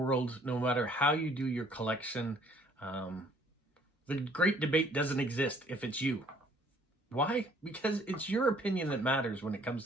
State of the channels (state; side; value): normal; both; correlation 0.60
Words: no matter how you do your collection, the great debate doesn't exist if it's you. Why? Because it's your opinion that matters when it